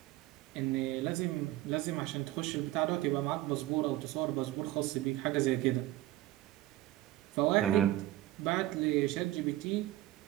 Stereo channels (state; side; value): quieter; left; 16.1 dB